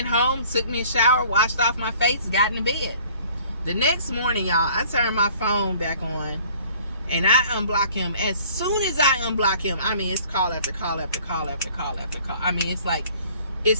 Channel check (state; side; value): inverted; both; correlation -0.53